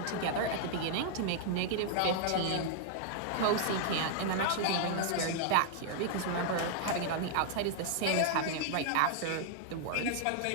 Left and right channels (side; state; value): both; different; correlation -0.01